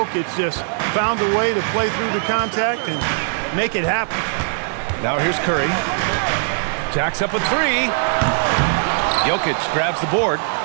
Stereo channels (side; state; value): left; silent; 66 dB below the other